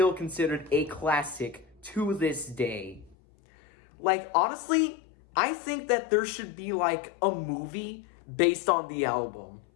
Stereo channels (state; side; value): drops out; right; at 3.2 s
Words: considered a classic to this day. Like, honestly, I think that there should be, like, a movie based on the album.